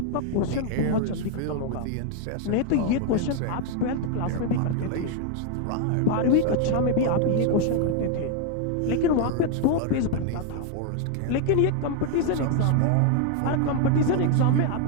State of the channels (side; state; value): both; different; correlation 0.00